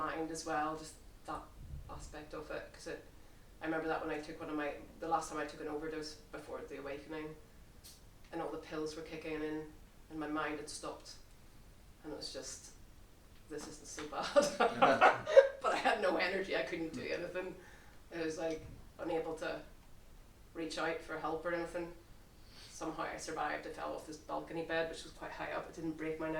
as well, just that aspect of it. Because I remember that when I took the last time I took an overdose before the awakening, and all the pills were kicking in, and my mind had stopped, and it was just, this isn't so bad. But I had no energy, I couldn't do anything. It was like unable to reach out for help or anything. Somehow I survived. I fell off this balcony bed, which was quite high up. It didn't break my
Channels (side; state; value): both; identical; correlation 1.00